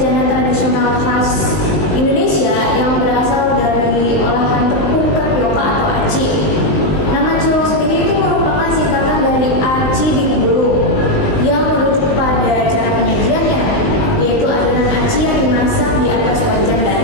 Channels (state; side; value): late; right; 19 ms